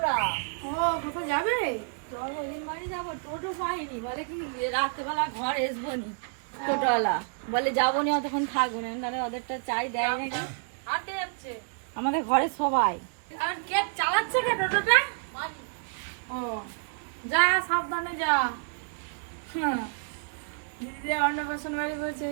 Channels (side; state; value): left; silent; digital silence